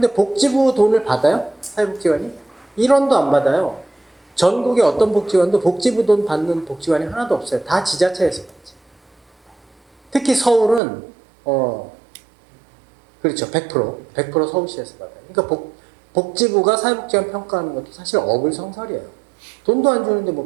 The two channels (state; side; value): drops out; left; at 10.8 s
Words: 복지부 돈을 받아요? 사회복지관이? 1원도 안 받아요. 전국의 어떤 복지관도 복지부 돈 받는 복지관이 하나도 없어요. 다 지자체에서 받지. 특히 서울은 그렇죠. 100% 서울시에서 받아요. 그러니까 복지부가 사회복지관 평가하는 것도 사실 어불성설이에요. 돈도 안 주는데